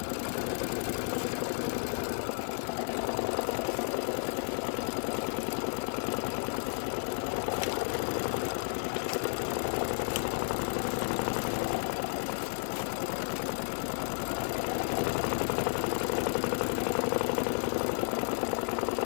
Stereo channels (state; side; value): silent; right; digital silence